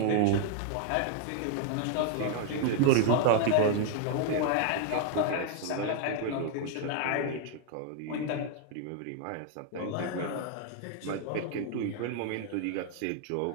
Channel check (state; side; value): different; both; correlation 0.00